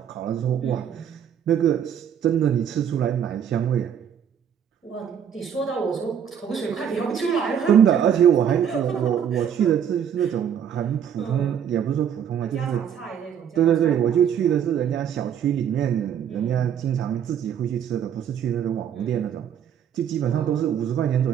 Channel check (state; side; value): quieter; left; 8.7 dB